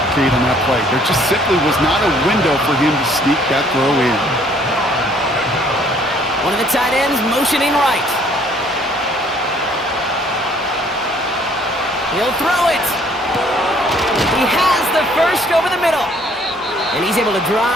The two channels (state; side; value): normal; both; correlation 0.60